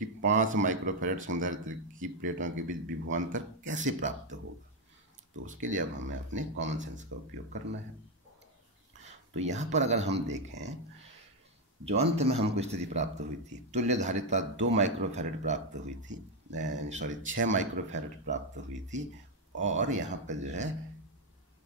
5 माइक्रोफैरड संधारित्र की प्लेटों के बीच विभवांतर कैसे प्राप्त होगा। तो उसके लिए अब हमें अपने कॉमन सेंस का उपयोग करना है। तो यहाँ पर अगर हम देखें, जो अंत में हमको स्थिति प्राप्त हुई थी, तुल्य धारिता 2 माइक्रोफैरड प्राप्त हुई थी, 6 माइक्रोफैरड प्राप्त हुई थी, और यहाँ पर जो है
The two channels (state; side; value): normal; both; correlation 0.05